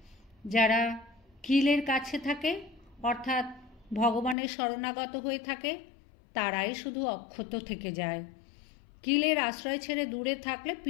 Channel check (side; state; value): right; drops out; at 4.4 s